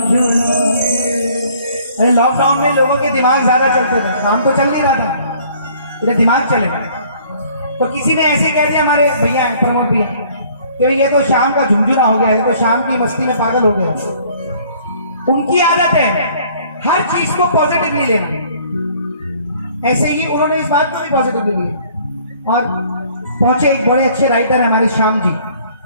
अरे लॉकडाउन में लोगों के दिमाग ज्यादा चलते थे, काम तो चल नहीं रहा था, तेरे दिमाग चले, तो किसी ने ऐसे कह दिया, हमारे भैया हैं प्रमोद भैया, तो ये तो शाम का झुंझुना हो गया है, तो शाम की मस्ती में पागल हो गया। उनकी आदत है हर चीज को पॉजिटिवली लेना, ऐसे ही उन्होंने इस बात को भी पॉजिटिवली लिया, और पहुंचे एक बड़े अच्छे राइटर है हमारे श्याम जी,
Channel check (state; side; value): inverted; both; correlation -0.57